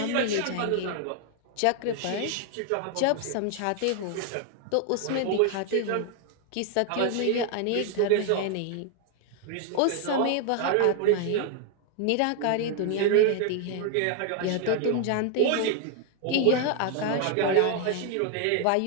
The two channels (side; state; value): both; different; correlation 0.00